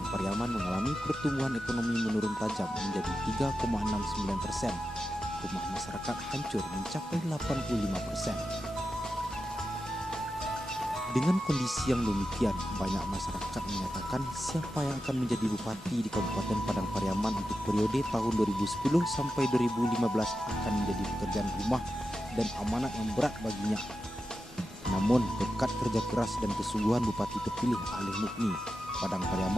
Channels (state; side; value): normal; both; correlation 0.90